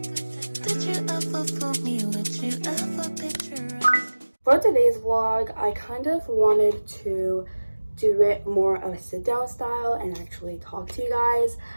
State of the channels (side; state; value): both; inverted; correlation -1.00